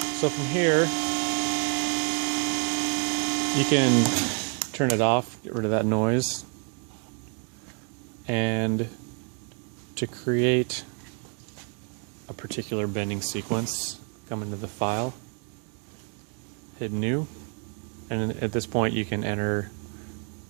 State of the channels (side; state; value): left; quieter; 37.8 dB